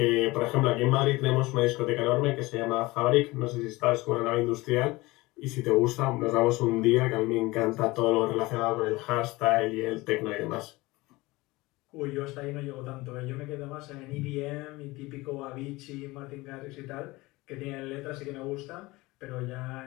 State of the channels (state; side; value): quieter; right; 21.2 dB